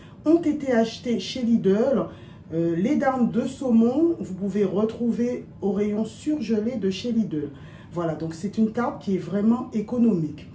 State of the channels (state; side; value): identical; both; correlation 1.00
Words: ont été achetés chez Lidl. Les darnes de saumon, vous pouvez retrouver au rayon surgelé de chez Lidl. Voilà, donc c'est une tarte qui est vraiment économique.